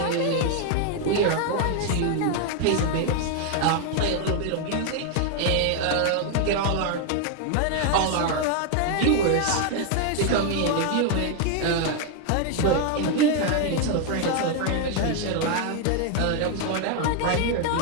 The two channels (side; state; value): both; different; correlation 0.01